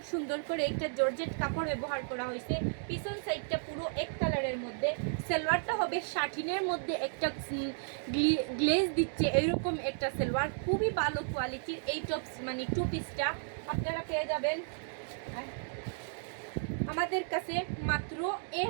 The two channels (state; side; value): silent; left; digital silence